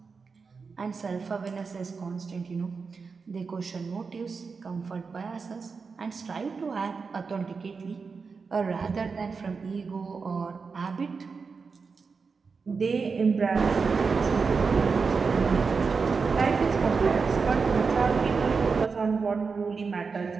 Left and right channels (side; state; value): left; quieter; 5.0 dB